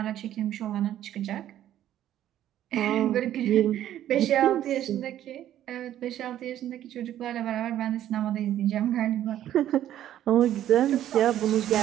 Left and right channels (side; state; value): left; quieter; 11.9 dB